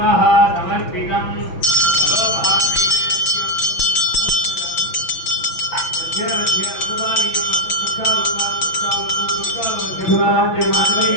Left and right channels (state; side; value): late; right; 6.0 ms